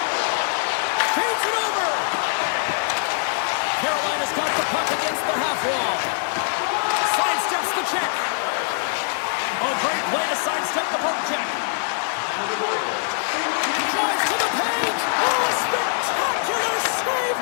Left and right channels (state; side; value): silent; right; digital silence